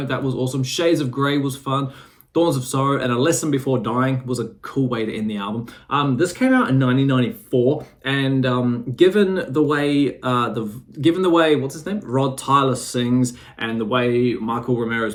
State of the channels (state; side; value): identical; both; correlation 1.00